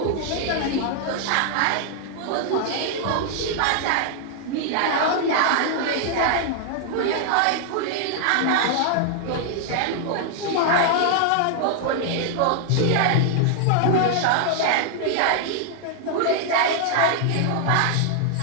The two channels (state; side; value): different; both; correlation 0.00